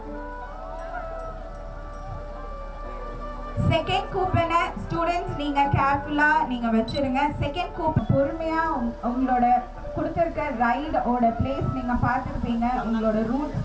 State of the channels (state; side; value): identical; both; correlation 1.00